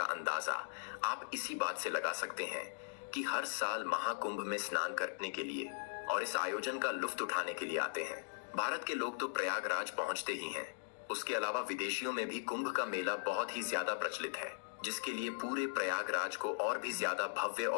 अंदाजा आप इसी बात से लगा सकते हैं कि हर साल महाकुंभ में स्नान करने के लिए और इस आयोजन का लुत्फ उठाने के लिए आते हैं। भारत के लोग तो प्रयागराज पहुंचते ही हैं। उसके अलावा विदेशियों में भी कुंभ का मेला बहुत ही ज्यादा प्रचलित है, जिसके लिए पूरे प्रयागराज को और भी ज्यादा भव्य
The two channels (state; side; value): silent; right; digital silence